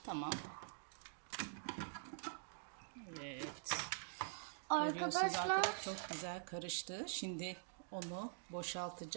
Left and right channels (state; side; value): silent; left; digital silence